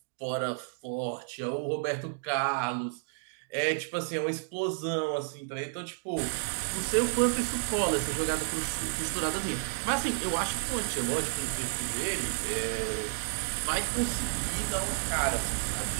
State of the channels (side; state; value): left; silent; digital silence